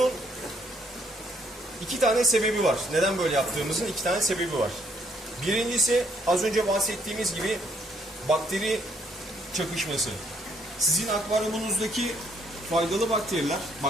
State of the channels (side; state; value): both; normal; correlation 0.68